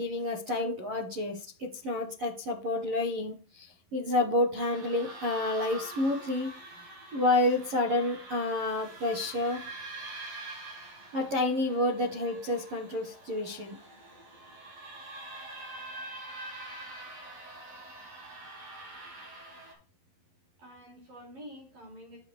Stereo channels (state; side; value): late; left; 11 ms